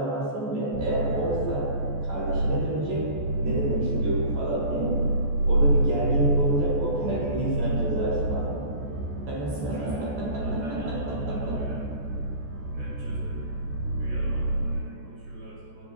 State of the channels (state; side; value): late; left; 14 ms